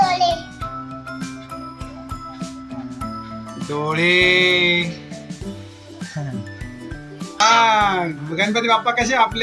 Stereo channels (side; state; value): both; identical; correlation 1.00